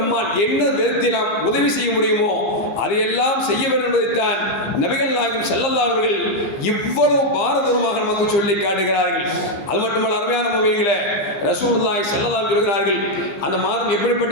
என்ன விதத்தில் நாம் உதவி செய்ய முடியுமோ அதையெல்லாம் செய்ய வேண்டும் என்பதைத்தான் நபிகள் நாயகம் ஸல்லல்லாஹு அலைஹி வஸல்லம் இவ்வளவு பாரதூரமாக நமக்கு சொல்லி காட்டுகிறார்கள். அது மட்டுமல்ல, அருமையான மூமின்களே, ரசூலுல்லாஹி ஸல்லல்லாஹு அலைஹி சொல்கிறார்கள், அந்த மாதம்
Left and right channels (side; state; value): right; late; 15 ms